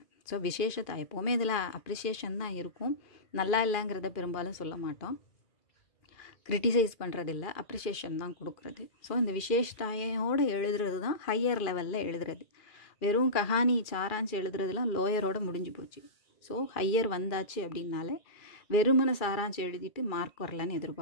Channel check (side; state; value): right; late; 2.4 ms